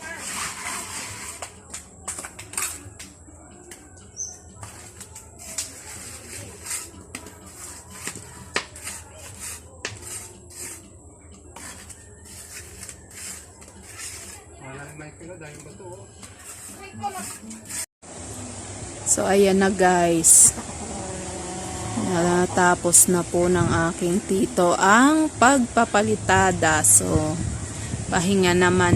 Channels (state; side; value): identical; both; correlation 1.00